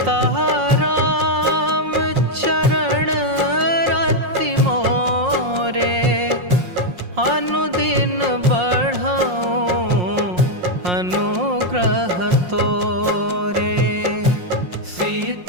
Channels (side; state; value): left; late; 5.6 ms